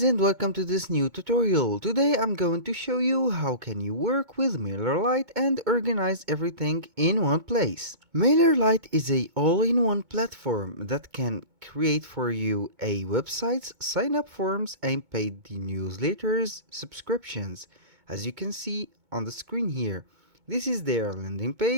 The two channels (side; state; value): left; late; 2.2 ms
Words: and welcome to this new tutorial. Today I'm going to show you how can you work with Mailerlite and organize everything in one place. Mailerlite is a all-in-one platform that can create for you a websites, sign-up forms and paid newsletters, subscriptions. As you can see on the screen here, this is their landing